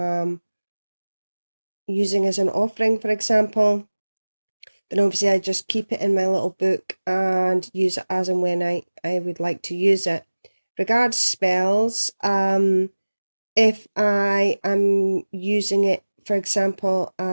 using as an offering, for example, then obviously I just keep it in my little book and use it as and when I would like to use it. Regards spells, if I am using it, for example,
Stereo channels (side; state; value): both; inverted; correlation -1.00